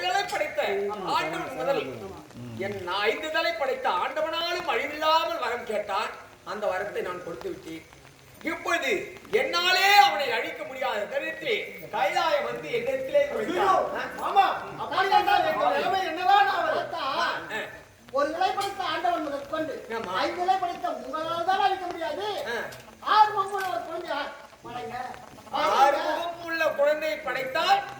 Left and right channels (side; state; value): both; identical; correlation 1.00